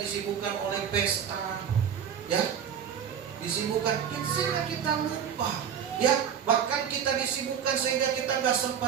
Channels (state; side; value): quieter; left; 8.2 dB